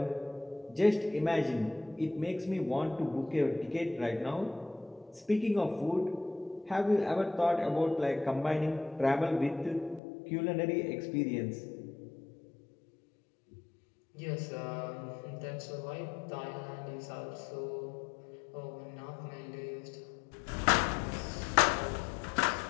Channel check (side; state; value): right; drops out; at 10.0 s